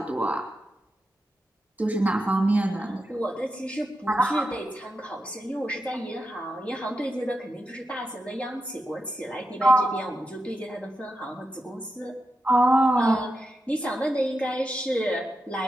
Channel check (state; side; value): normal; both; correlation 0.88